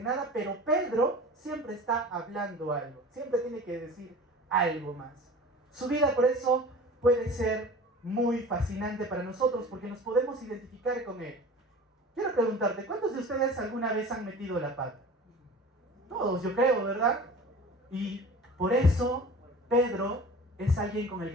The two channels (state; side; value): normal; both; correlation 0.39